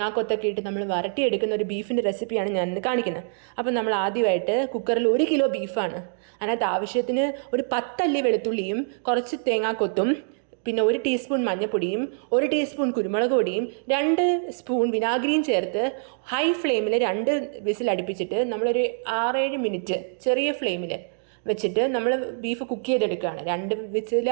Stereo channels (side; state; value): left; silent; digital silence